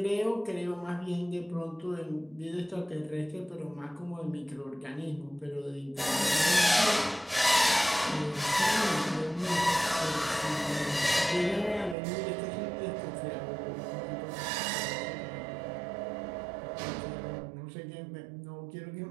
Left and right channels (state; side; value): drops out; left; at 12.0 s